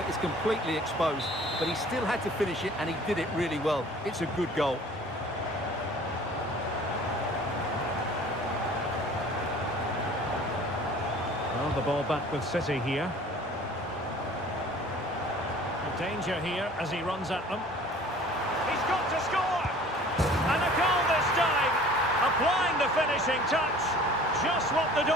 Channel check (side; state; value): both; normal; correlation 0.48